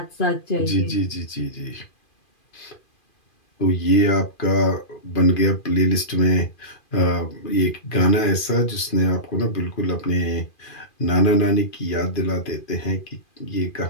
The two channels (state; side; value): late; right; 2.4 ms